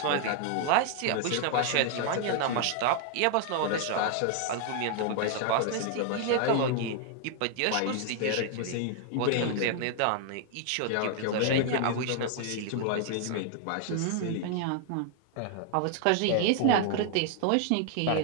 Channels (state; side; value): different; both; correlation 0.00